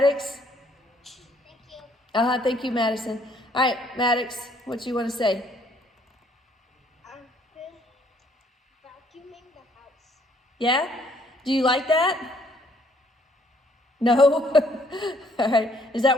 Thank you. Thank you, Madison. All right, Maddox, what do you want to say? I've been vacuuming the house. Yeah? Do you like that? No? All right. Is that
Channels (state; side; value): normal; both; correlation 0.65